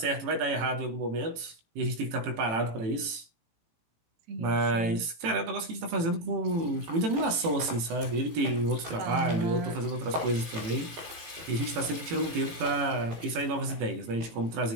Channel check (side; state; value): left; late; 18 ms